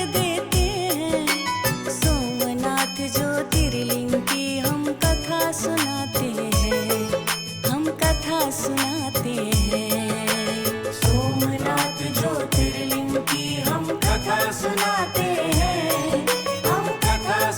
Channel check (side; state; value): both; identical; correlation 1.00